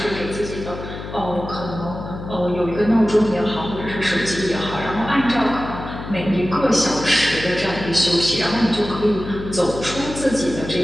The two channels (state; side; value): noise; left; hum, 10 dB below the sound